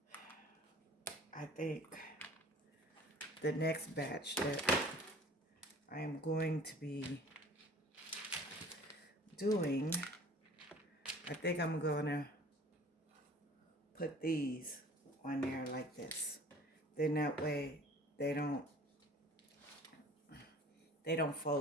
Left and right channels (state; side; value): normal; both; correlation 0.47